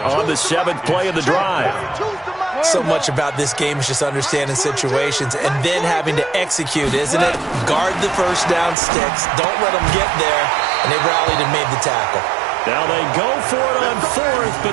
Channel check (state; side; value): drops out; left; at 8.8 s